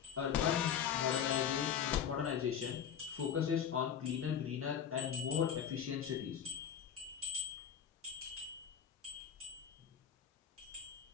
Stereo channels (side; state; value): right; quieter; 8.4 dB